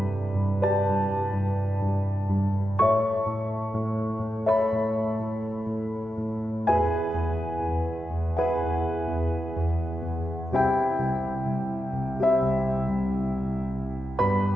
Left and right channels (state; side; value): normal; both; correlation 0.89